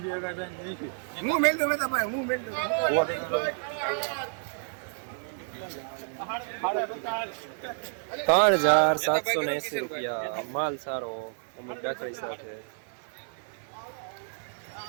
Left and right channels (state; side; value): silent; left; 58 dB below the other